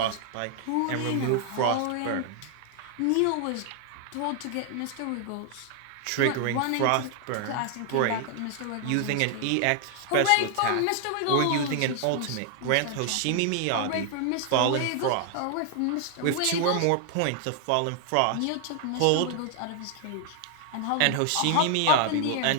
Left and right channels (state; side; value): different; both; correlation 0.00